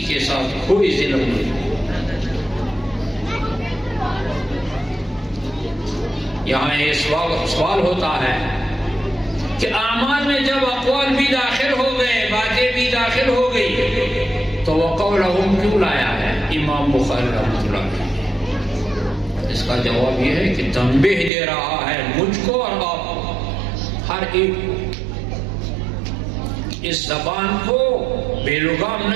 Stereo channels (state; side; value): drops out; left; at 21.3 s